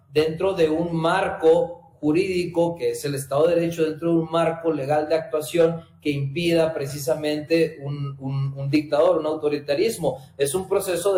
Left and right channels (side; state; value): both; identical; correlation 1.00